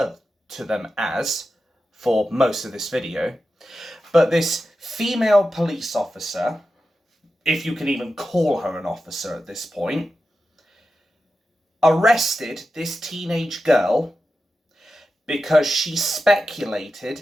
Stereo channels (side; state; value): both; normal; correlation 0.91